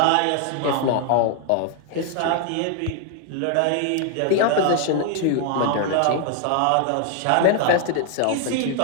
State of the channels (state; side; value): different; both; correlation 0.00